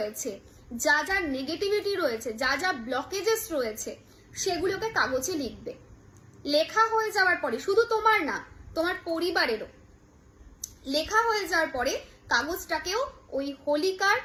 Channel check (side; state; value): both; identical; correlation 1.00